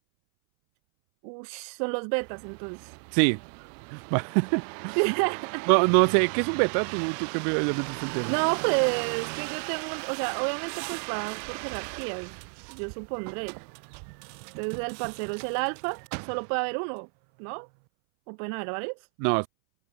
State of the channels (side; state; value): left; silent; 59 dB below the other